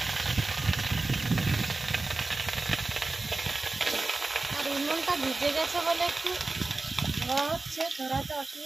আর উনুনটা ভিজে গেছে বলে একটু ধোয়া হচ্ছে, ধরাতে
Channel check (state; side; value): quieter; left; 3.3 dB